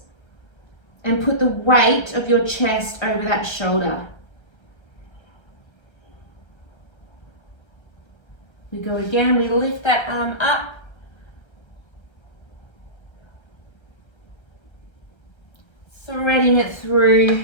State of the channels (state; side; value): late; right; 1.3 ms